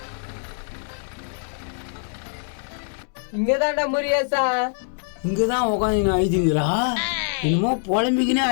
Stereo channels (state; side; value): silent; right; 63 dB below the other